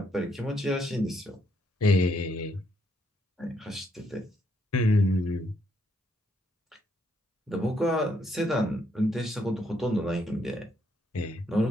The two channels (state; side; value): normal; both; correlation 0.73